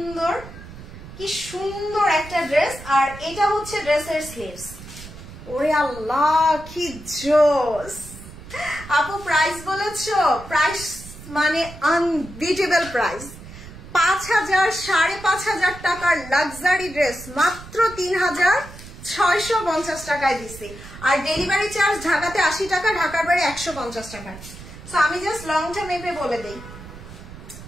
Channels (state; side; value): noise; right; rumble, 15 dB below the sound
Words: কি সুন্দর একটা ড্রেস। আর এটা হচ্ছে ড্রেসের স্লিভস। ওরে আল্লাহ কি জোস। আপু প্রাইস বলেছো, প্রাইস মানে আনবিটেবল প্রাইস। 5000 5500 টাকার লাক্সারি ড্রেস মাত্র 3650 টাকায় দিছি। আর ডেলিভারি চার্জ ঢাকাতে 80 টাকা, ঢাকার বাইরে 150 টাকা। সো আমি জাস্ট লংটা মেপে বলে দেই।